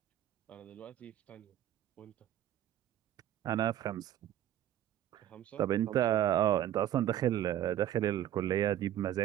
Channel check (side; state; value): left; quieter; 11.9 dB